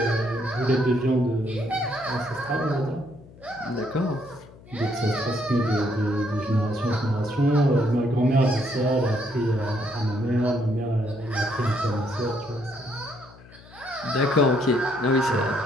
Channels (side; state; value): left; noise; hum, 22 dB below the sound